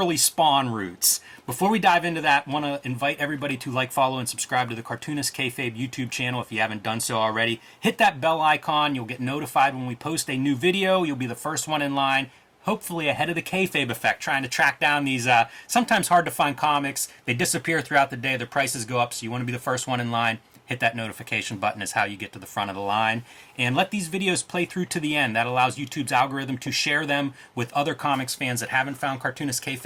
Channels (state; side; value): identical; both; correlation 1.00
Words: Spawn roots. Before we dive into that, I want to invite everybody to like, follow, and subscribe to the Cartoonist Kayfabe YouTube channel if you haven't done so already. Hit that bell icon. You'll get notified when we post a new video. You'll be the first one in line, hopefully ahead of the Kayfabe effect, trying to track down these sometimes hard to find comics. They disappear throughout the day. Their prices go up, so you want to be the first one in line. Hit that notification button is how you get to the front of the line. And let these videos play through to the end. That allows YouTube's algorithm to share them with other comics fans that haven't found Cartoonist